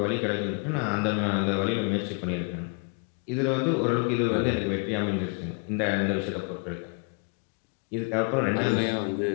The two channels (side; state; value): right; quieter; 37.3 dB